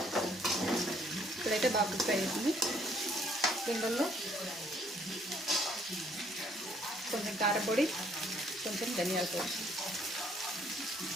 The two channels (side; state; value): both; normal; correlation 0.65